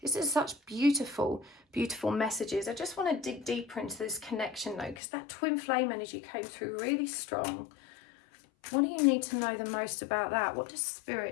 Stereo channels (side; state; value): right; drops out; at 5.0 s